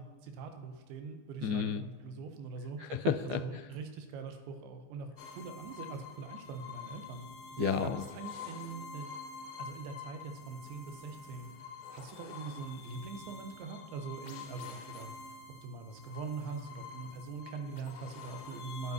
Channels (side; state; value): left; late; 15 ms